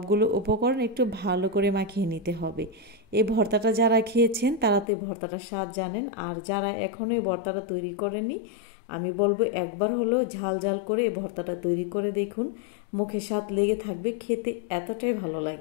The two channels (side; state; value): right; drops out; at 4.9 s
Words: উপকরণ একটু ভালো করে মাখিয়ে নিতে হবে। এই ভর্তাটা যারা খেয়েছেন তারা তো এই ভর্তাটার স্বাদ জানেন, আর যারা এখনও এই ভর্তাটা তৈরি করেনি আমি বলবো একবার হলেও ঝাল ঝাল করে এই ভর্তাটা তৈরি করে দেখুন, মুখে স্বাদ লেগে থাকবে, খেতে এতটাই ভালো